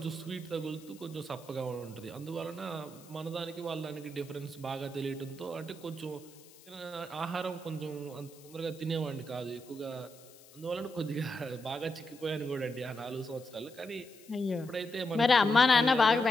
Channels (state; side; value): noise; left; hiss, 23 dB below the sound